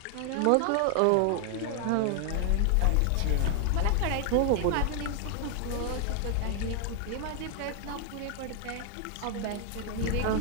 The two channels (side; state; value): both; different; correlation 0.00